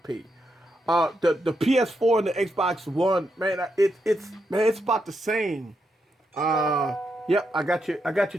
The PS4 and the Xbox One, man, it's about the same. Yep, I got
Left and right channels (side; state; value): both; normal; correlation 0.82